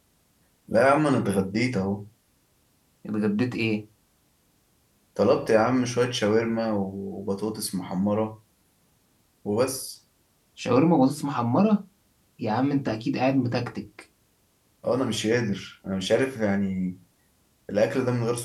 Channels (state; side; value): identical; both; correlation 1.00